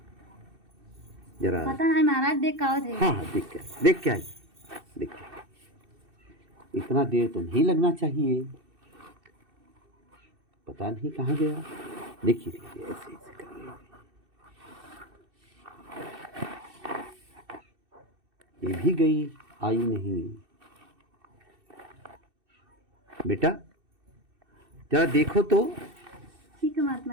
जरा पता नहीं महाराज देख का थे। हाँ हाँ देख के आइए, देख के। इतना देर तो नहीं लगना चाहिए, पता नहीं कहाँ गया। देखिए देखिए ऐसे ऐसे करिए। ये भी गई, आई नहीं। बेटा जरा देखो तो। ठीक है महात्मा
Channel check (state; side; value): late; left; 2.6 ms